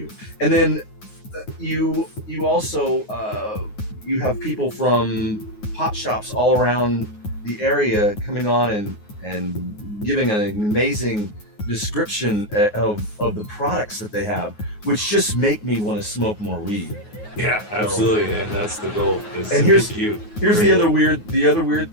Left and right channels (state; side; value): late; right; 9.5 ms